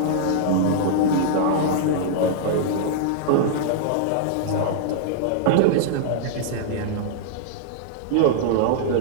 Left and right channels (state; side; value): different; both; correlation -0.01